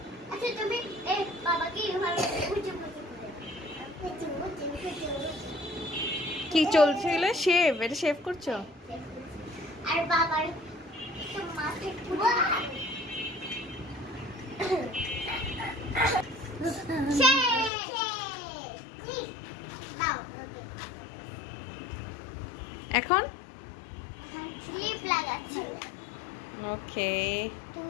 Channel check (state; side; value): drops out; right; at 17.7 s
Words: আচ্ছা তুমি এই বাবাকে ভালো বুঝে বুঝে কি চলছিল? শেভ? এটা শেভ করছো? আর বাবার তো মাথায় পুরো এখন ক্লিপ লাগাচ্ছি। ওকে,